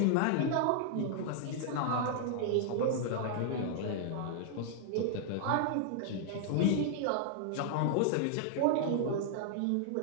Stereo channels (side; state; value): both; different; correlation -0.01